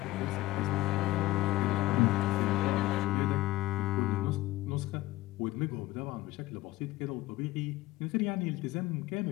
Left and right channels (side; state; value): right; quieter; 17.3 dB